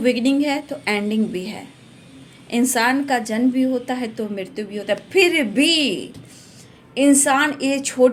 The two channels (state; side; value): identical; both; correlation 1.00